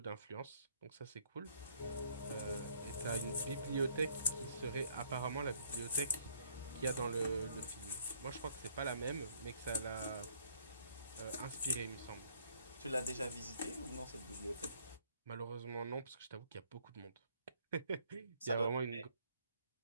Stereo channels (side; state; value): both; inverted; correlation -0.63